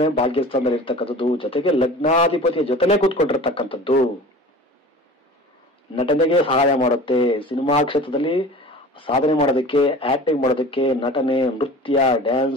ಭಾಗ್ಯಸ್ಥಾನದಲ್ಲಿ ಇರ್ತಕ್ಕಂಥದ್ದು, ಜೊತೆಗೆ ಲಗ್ನಾಧಿಪತಿಯ ಜೊತೆಲೇ ಕೂತ್ಕೊಂಡಿರ್ತಕ್ಕಂಥದ್ದು. ನಟನೆಗೆ ಸಹಾಯ ಮಾಡುತ್ತೆ. ಸಿನಿಮಾ ಕ್ಷೇತ್ರದಲ್ಲಿ ಸಾಧನೆ ಮಾಡೋದಕ್ಕೆ, ಆಕ್ಟಿಂಗ್ ಮಾಡೋದಕ್ಕೆ, ನಟನೆ, ನೃತ್ಯ,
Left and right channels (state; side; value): normal; both; correlation 0.39